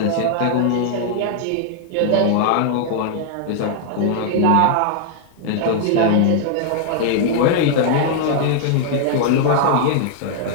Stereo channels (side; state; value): both; different; correlation 0.00